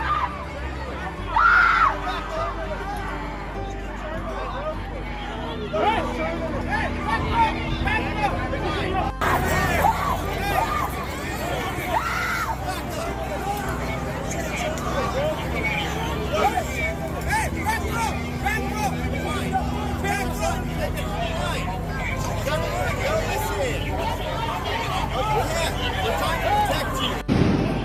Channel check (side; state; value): both; identical; correlation 1.00